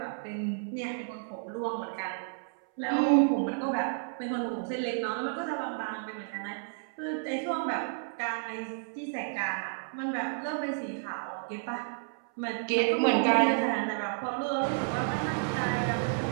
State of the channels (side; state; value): left; silent; 57 dB below the other